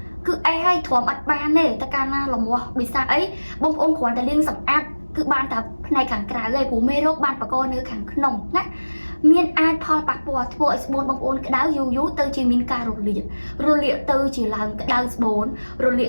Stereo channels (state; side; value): inverted; both; correlation -1.00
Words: គឺអេសឲ្យទ្រាំអត់បានទេតែកាលណាលមាស់វិសាអីបងប្អូនគ្រាន់តែលាងសម្អាតគឺបានតែផ្នែកខាងក្រៅឯងព្រោះមេរោគបានបកកនៅខាងក្នុងណាមានអាចផលប៉ះពាល់ធ្វើឲ្យស្បូនបងប្អូនក្តៅយូរទៅជាមានការរលាកទៅជាឡើងក្តៅស្បូនរលា